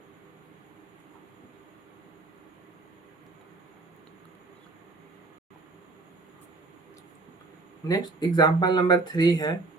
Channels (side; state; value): left; quieter; 3.5 dB